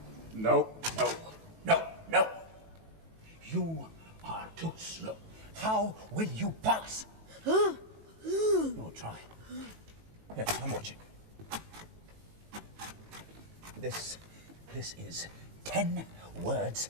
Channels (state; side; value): late; left; 18 ms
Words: No. You are too slow. How will you pass? You'll try. Yes, I'm watching. This is 10 words